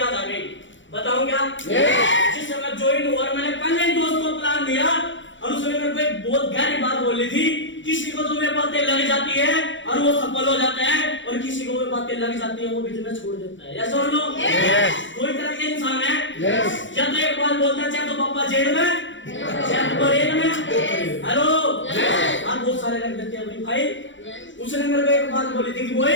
आ गई। बताऊं क्या? जिस समय ज्वाइन हुआ, मैंने पहले ही दोस्त को प्लान दिया और उसने मेरे को एक बहुत गहरी बात बोली थी, किसी को तुम्हें बातें लग जाती है और वो सफल हो जाता है, और किसी को वो बातें लग जाती है वो बिजनेस छोड़ देता है। यस और नो? कोई तरह के इंसान है, या तो एक बात बोलता है चाहे तो पापा जेल में, हेलो आप बहुत सारे रख देते हैं अपनी फाइल। उसने मेरे को एक बात बोली थी कि बोल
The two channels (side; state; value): right; late; 0.55 ms